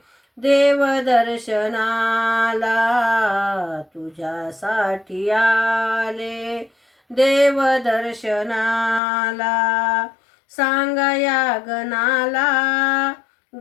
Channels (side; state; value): right; drops out; at 9.0 s